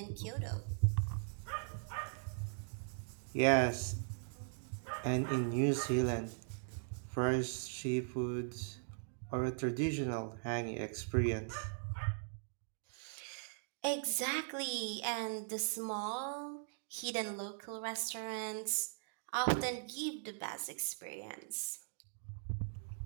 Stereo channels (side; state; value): left; silent; digital silence